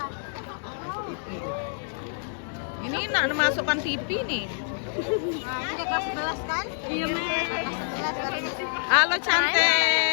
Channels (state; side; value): silent; right; digital silence